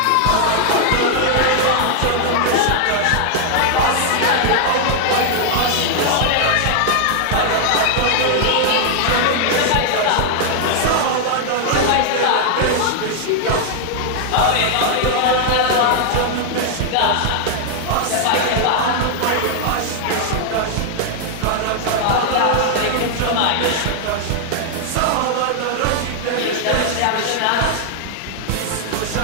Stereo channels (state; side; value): different; both; correlation 0.00